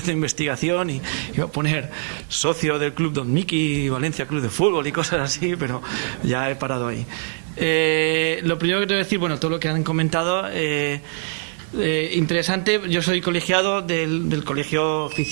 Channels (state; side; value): silent; left; digital silence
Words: de Investigación, y iba a poner socio del Club Don Miki, Valencia Club de Fútbol y cosas así, pero ya he parado ahí. Lo primero que tengo que decir, bueno, todo lo que han comentado, interesante. Yo soy colegiado del Colegio